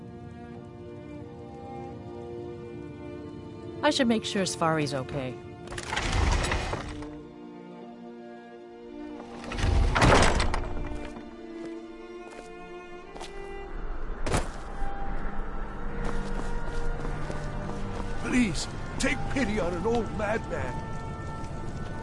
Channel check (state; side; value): identical; both; correlation 1.00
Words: I should make sure Sfari's okay. Please, take pity on an old madman.